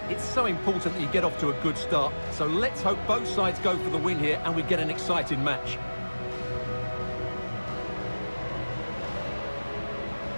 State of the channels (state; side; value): inverted; both; correlation -1.00